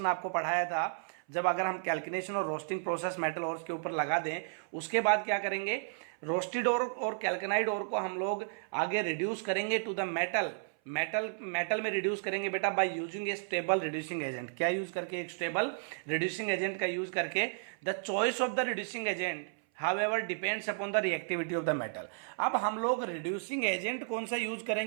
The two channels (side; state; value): left; silent; 56 dB below the other